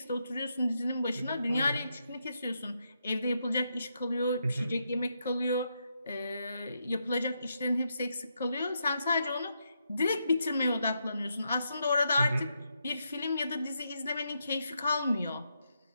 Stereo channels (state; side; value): inverted; both; correlation -0.81